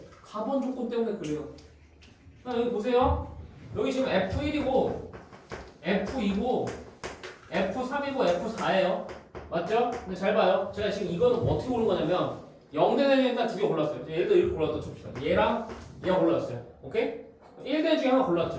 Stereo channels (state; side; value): identical; both; correlation 1.00